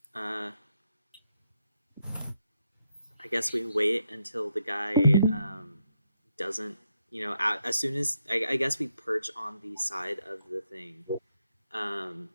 I guess we wait until the guy doesn't, as soon as I guess we perch on the side of the thing,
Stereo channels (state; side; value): inverted; both; correlation -0.79